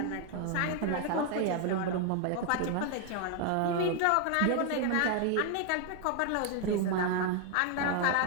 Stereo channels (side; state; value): both; different; correlation 0.01